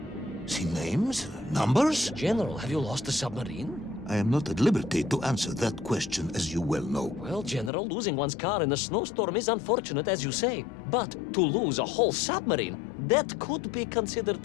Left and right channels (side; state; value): right; drops out; at 7.7 s